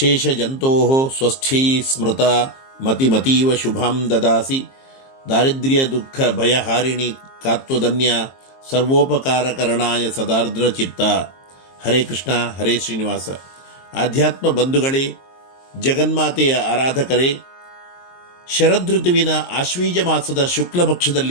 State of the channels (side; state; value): right; late; 22 ms